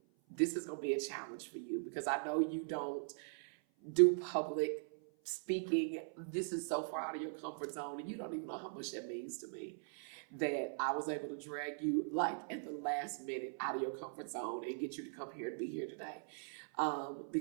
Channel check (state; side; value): silent; left; 51 dB below the other